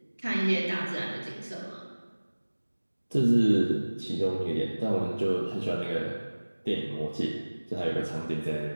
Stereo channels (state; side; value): inverted; both; correlation -1.00